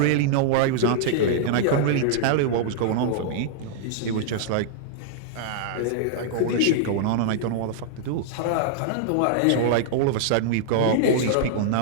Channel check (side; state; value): both; different; correlation -0.01